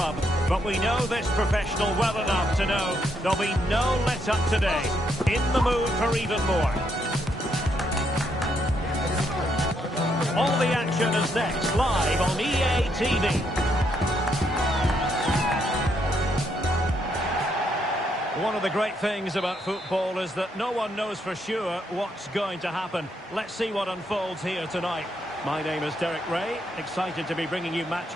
But we know this professional well enough to know there'll be no let-up today. In the mood for even more. All the action is next, live on EA TV. One of the great things about football is that no one knows for sure what's going to happen. Let's see what unfolds here tonight. My name is Derek Ray, excited to be bringing you match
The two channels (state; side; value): normal; both; correlation 0.76